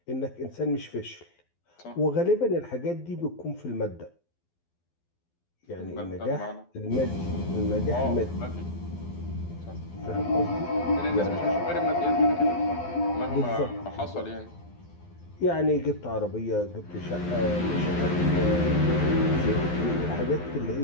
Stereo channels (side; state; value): right; late; 12 ms